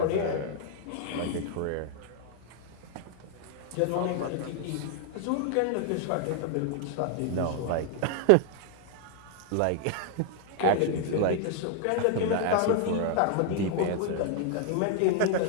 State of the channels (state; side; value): different; both; correlation 0.00